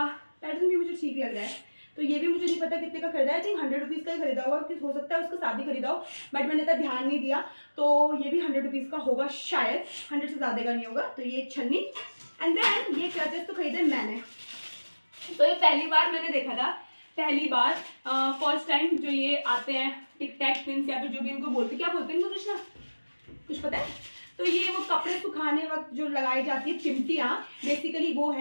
पैटर्न भी मुझे ठीक लग रहा है। तो ये भी मुझे नहीं पता कितने का खरीदा है, आई थिंक 100 रुपीज़ का ही खरीदा होगा, कि हो सकता है उसका साथ ही खरीदा हो, बट मैंने इतना ध्यान नहीं दिया। तो ये भी 100 रुपीज़ का होगा शायद, 100 से ज़्यादा का नहीं होगा। तो ये छन्नी। एंड देन ये क्लचेस तो खरीदे मैंने, तो ये पहली बार मैंने देखा था, पहली बार फर्स्ट टाइम जो ये आते हैं टिक टैक पिन्स या फिर जो भी इनको बोलते, क्या बोलते हैं इनको कृष्णा, कुछ पता है? तो ये वो कपड़े सुखाने वक्त जो लगाई जाती है चिमटियाँ, बेसिकली वो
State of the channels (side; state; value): both; inverted; correlation -1.00